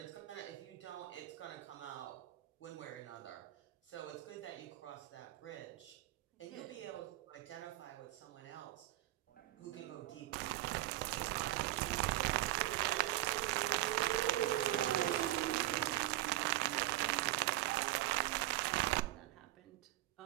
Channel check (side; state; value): left; quieter; 16.4 dB